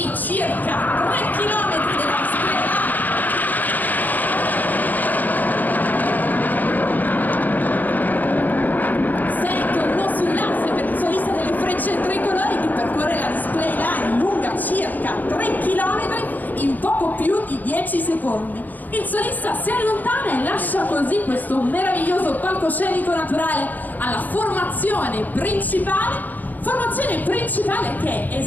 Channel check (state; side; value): late; right; 0.084 ms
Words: circa 3 km della strada. Tricolori che percorre la display line lunga circa 3 km in poco più di 10 secondi. Il solista si allontana e lascia così questo meraviglioso palcoscenico naturale alla formazione principale che